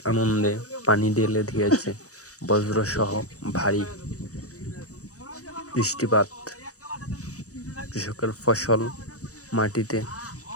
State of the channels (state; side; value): late; right; 0.66 ms